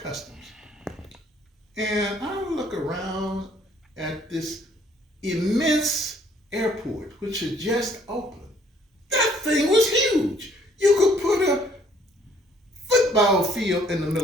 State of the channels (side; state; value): both; normal; correlation 0.62